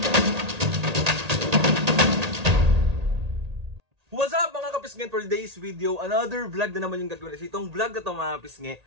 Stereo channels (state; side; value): late; left; 1.8 ms